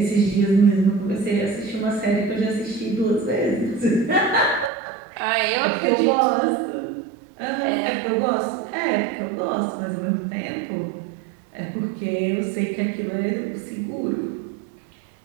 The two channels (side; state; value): left; drops out; at 4.7 s